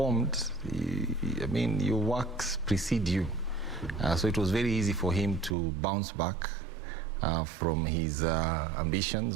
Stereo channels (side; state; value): left; drops out; at 5.6 s